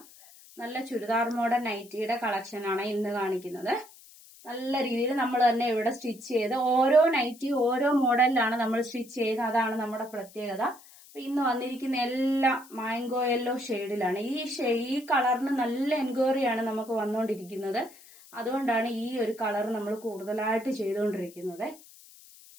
നല്ല ചുരിദാർ മോഡൽ നൈറ്റിയുടെ കളക്ഷൻ ആണ് ഇന്ന് കാണിക്കുന്നത്. നല്ല രീതിയിൽ നമ്മൾ തന്നെ ഇവിടെ സ്റ്റിച്ച് ചെയ്ത് ഓരോ നൈറ്റി ഓരോ മോഡലിലാണ് നമ്മൾ സ്റ്റിച്ച് ചെയ്യുന്നത്. അതാണ് നമ്മുടെ പ്രത്യേകത. അപ്പൊ ഇന്ന് വന്നിരിക്കുന്ന എല്ലാം മാംഗോ യെല്ലോ ഷെയ്ഡിലാണ്. ഈ കളറിന് നല്ല എൻക്വയറിയാണ് നമുക്ക് വന്നുകൊണ്ടിരിക്കുന്നത്. അതുകൊണ്ടാണ് ഈ ഒരു കളർ നമ്മൾ കൂടുതലായിട്ട് ചെയ്തുകൊണ്ടിരിക്കുന്നത്.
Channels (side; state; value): left; noise; hiss, 22 dB below the sound